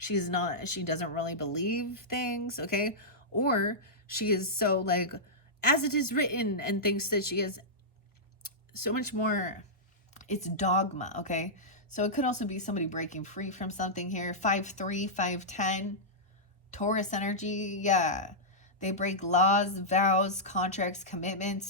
doesn't really believe things, okay? Or she is so like, as it is written, and thinks that she is so much more, it's dogma, okay? So it could also be somebody breaking free from something here. 5'3", 5'10", Taurus energy, yeah. They break laws, vows, contracts,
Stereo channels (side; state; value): both; normal; correlation -0.12